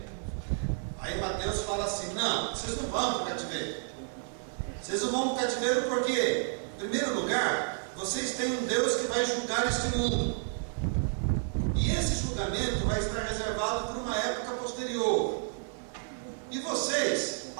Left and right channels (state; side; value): silent; left; 57 dB below the other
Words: Aí Mateus fala assim: não, vocês não vão para o cativeiro. Vocês não vão para o cativeiro porque, em primeiro lugar, vocês têm um Deus que vai julgar este mundo. E esse julgamento vai estar reservado por uma época posterior. E vocês,